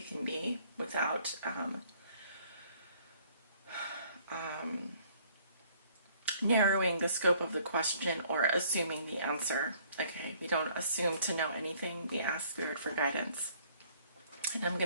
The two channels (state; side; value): inverted; both; correlation -0.60